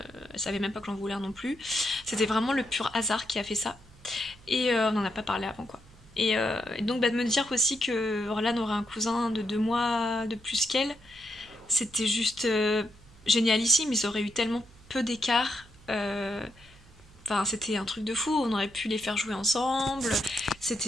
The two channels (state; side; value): noise; right; hum, 24 dB below the sound